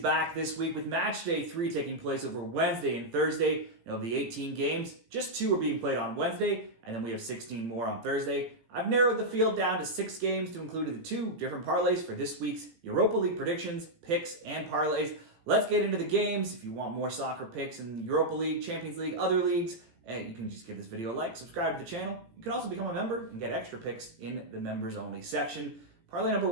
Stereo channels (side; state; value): left; late; 17 ms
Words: this week with Matchday 3 taking place over Wednesday and Thursday. Of the 18 games, just 2 are being played on Wednesday, and then we have 16 more on Thursday. I've narrowed the field down to 6 games to include the 2 different parlays for this week's Europa League predictions, picks, and parlays. Let's get into the games. If you want more soccer picks in the Europa League, Champions League, other leagues, you can just give this video a like, subscribe to the channel. You can also become a member and get extra picks in the members only section. Parlay number